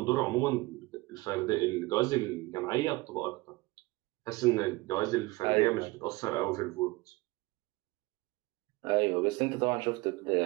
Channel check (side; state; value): left; quieter; 22.0 dB